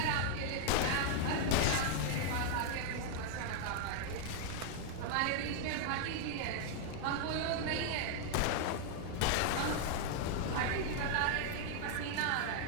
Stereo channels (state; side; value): different; both; correlation 0.00